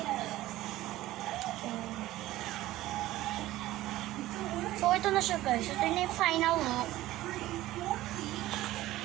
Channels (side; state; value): left; quieter; 15.9 dB